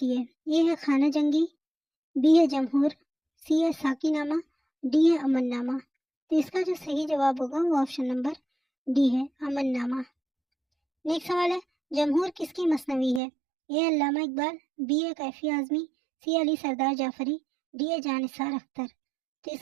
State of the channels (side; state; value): left; drops out; at 13.2 s